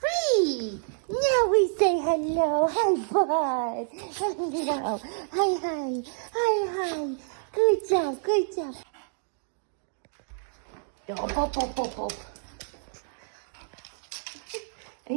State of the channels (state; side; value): silent; left; digital silence